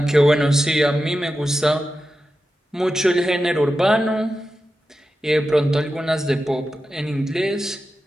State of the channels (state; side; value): normal; both; correlation 0.91